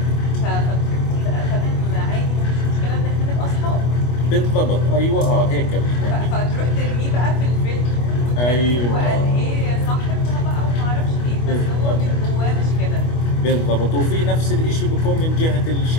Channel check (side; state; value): right; late; 25 ms